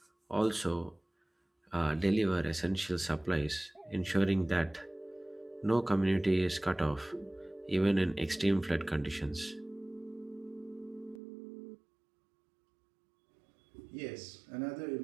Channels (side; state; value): left; drops out; at 11.2 s